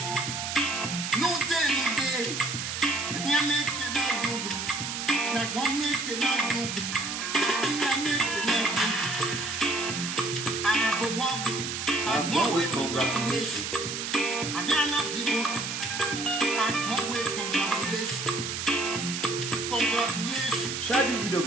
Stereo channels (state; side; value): noise; right; hiss, 4 dB below the sound